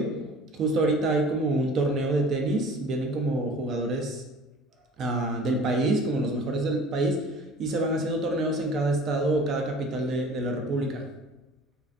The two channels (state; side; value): normal; both; correlation 0.46